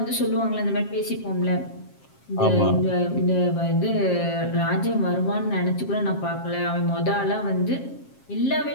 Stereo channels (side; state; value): right; late; 7.4 ms